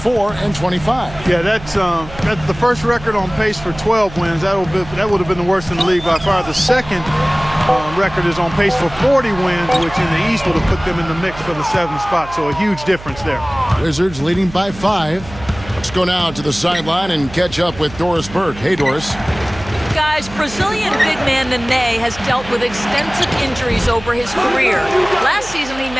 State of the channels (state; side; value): noise; right; hum, 15 dB below the sound